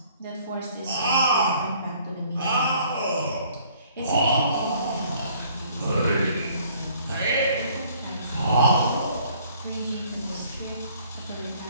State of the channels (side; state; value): both; inverted; correlation -0.58